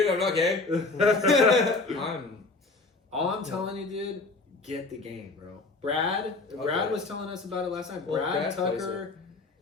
I'm not gay. I'm All I'm telling you, dude, get the game, bro. Brad Okay. was telling us about it last night. Well, Brad, Brad plays Tucker,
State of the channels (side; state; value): right; quieter; 3.6 dB